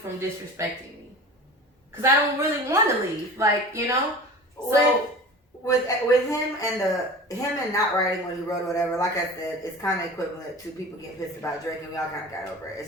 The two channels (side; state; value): both; normal; correlation 0.36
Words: disrespecting me, because I don't really want to leave, like, you know. So with him and not writing what he wrote or whatever, like I said, it's kind of equivalent to people getting pissed about Drake, and we all kind of got over it.